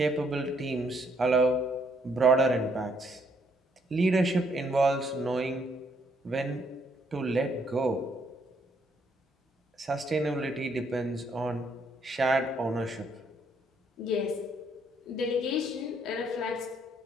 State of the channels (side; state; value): both; normal; correlation 0.70